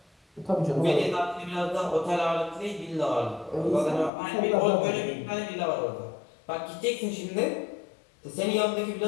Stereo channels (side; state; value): right; drops out; at 4.1 s